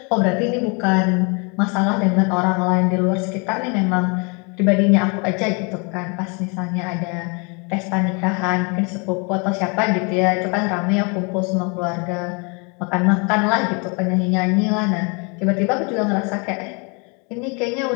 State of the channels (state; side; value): quieter; right; 32.7 dB